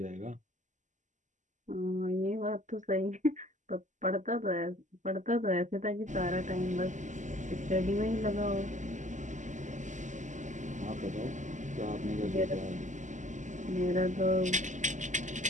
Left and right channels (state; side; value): late; left; 0.36 ms